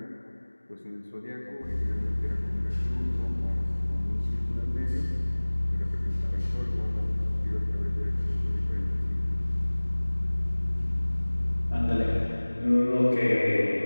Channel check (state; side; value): inverted; both; correlation -1.00